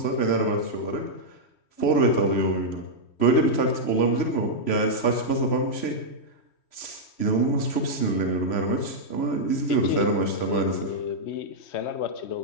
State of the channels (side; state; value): right; late; 3.0 ms